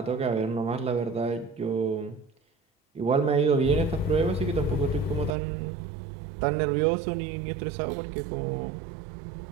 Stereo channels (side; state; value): left; drops out; at 5.4 s